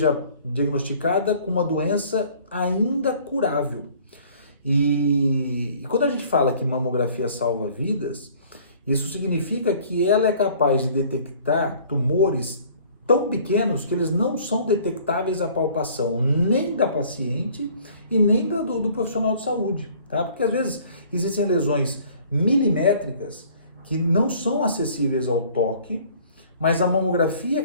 diagnosticada com uma doença ainda curável. E quando a gente fala que mamografia salva vidas, isso significa que ela é capaz de detectar tumores tão pequenos que eles não são detectáveis à palpação nem da paciente e nem do profissional de saúde, tá? Porque às vezes existem lesões milimétricas que não são acessíveis ao toque, mas a mamografia é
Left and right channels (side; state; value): both; inverted; correlation -0.54